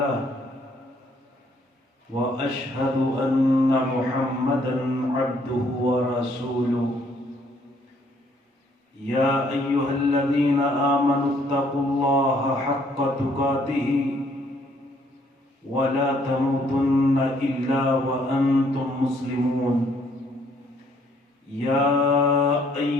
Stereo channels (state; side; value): normal; both; correlation 0.66